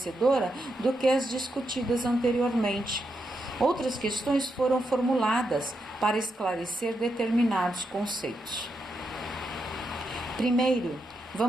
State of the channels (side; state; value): both; normal; correlation 0.83